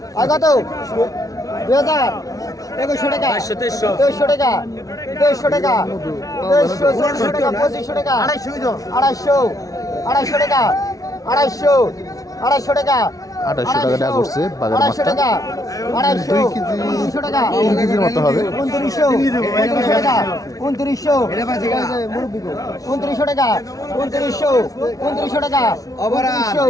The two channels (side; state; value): right; late; 0.17 ms